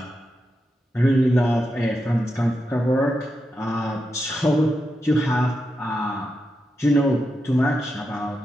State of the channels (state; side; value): normal; both; correlation 0.87